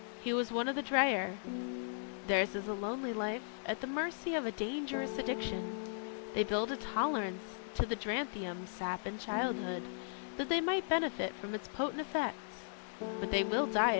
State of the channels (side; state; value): right; silent; digital silence